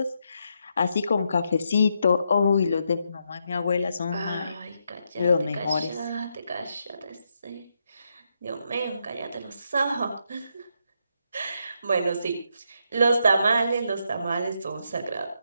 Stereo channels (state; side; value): inverted; both; correlation -0.80